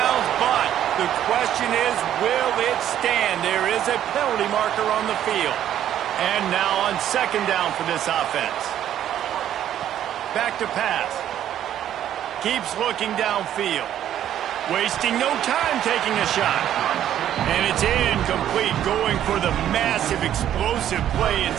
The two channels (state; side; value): quieter; left; 11.0 dB